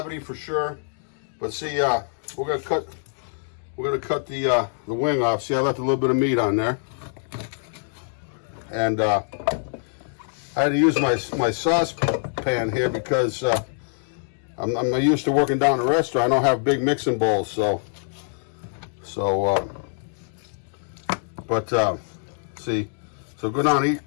for sure. But see, we're gonna cut the wing off. See, I left a little bit of meat on there, and I had to use my saucepan here because I'm used to working down at a restaurant. I don't have big mixing bowls, see, so go down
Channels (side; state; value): right; silent; digital silence